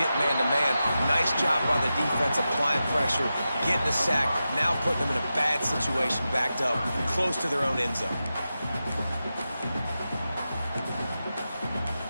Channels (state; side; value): inverted; both; correlation -0.91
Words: man-to-man. Nice job by the defense applying pressure, getting the sack, now putting them in a bad situation backed up close to their own end zone.